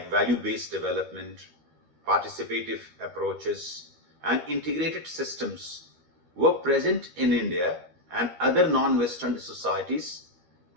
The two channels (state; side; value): late; left; 13 ms